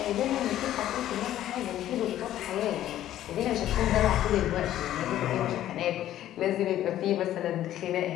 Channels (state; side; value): quieter; right; 12.7 dB